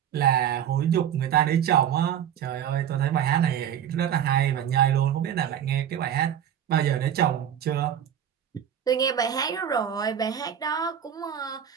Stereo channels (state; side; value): quieter; left; 9.4 dB